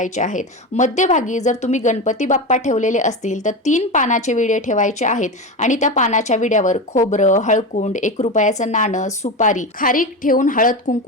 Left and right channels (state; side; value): normal; both; correlation 0.21